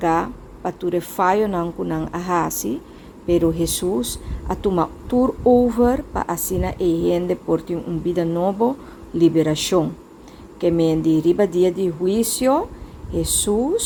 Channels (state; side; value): identical; both; correlation 1.00